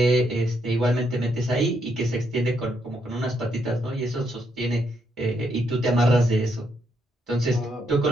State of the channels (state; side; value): normal; both; correlation 0.76